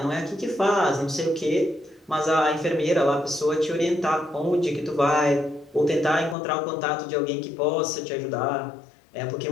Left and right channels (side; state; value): right; drops out; at 6.4 s